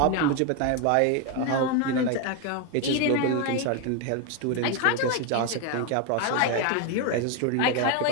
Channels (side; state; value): both; different; correlation 0.01